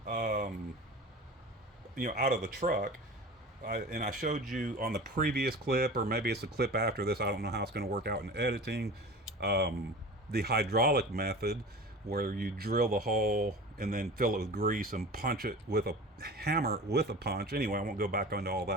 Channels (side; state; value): both; normal; correlation 0.36